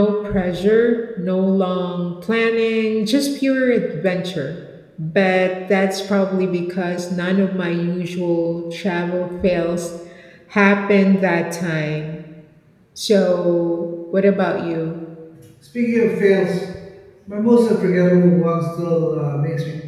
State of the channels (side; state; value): both; identical; correlation 1.00